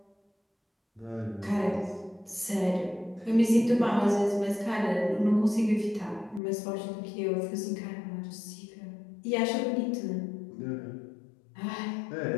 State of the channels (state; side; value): drops out; right; at 6.4 s